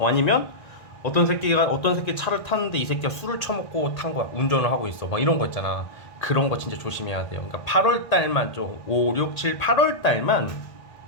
어떤 새끼 차를 탔는데 이 새끼가 술을 처먹고 탄 거야. 운전을 하고 있어. 막 이런 거 있잖아. 그런 거 진짜 조심해야 돼요. 그러니까 8월 달만 좀 5, 6, 7, 8월 달만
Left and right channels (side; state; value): right; late; 1.6 ms